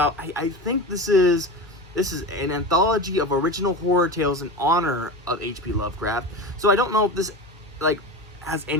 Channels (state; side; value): normal; both; correlation 0.26